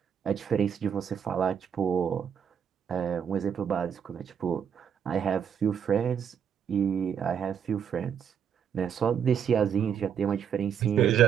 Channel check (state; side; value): quieter; left; 8.0 dB